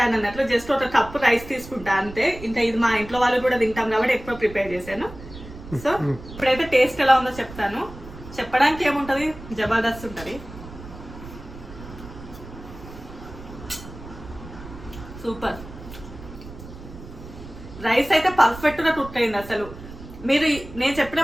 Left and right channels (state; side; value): noise; right; rumble, 15 dB below the sound